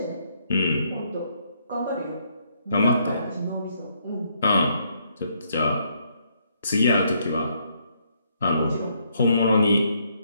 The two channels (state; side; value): inverted; both; correlation -0.72